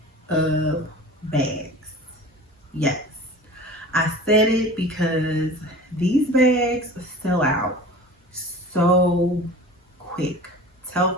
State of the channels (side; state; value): both; normal; correlation 0.39